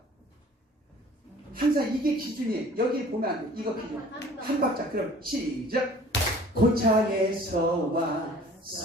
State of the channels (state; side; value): normal; both; correlation 0.50